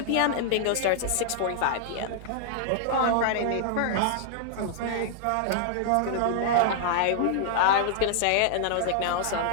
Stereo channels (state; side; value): different; both; correlation -0.01